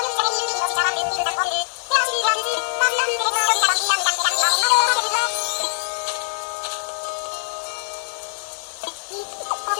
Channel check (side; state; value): right; silent; digital silence